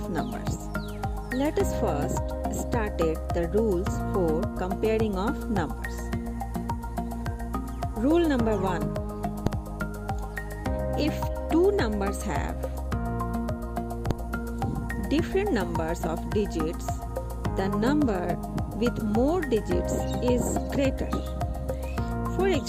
numbers. Let us first start the rules for comparing of numbers. Rule number 1. If two numbers have different numbers of digits, the number with more digits is greater. For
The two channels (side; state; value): both; identical; correlation 1.00